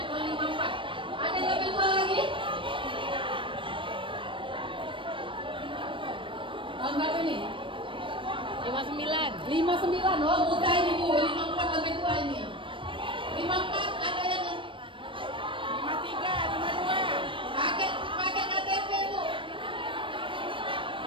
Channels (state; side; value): late; left; 0.25 ms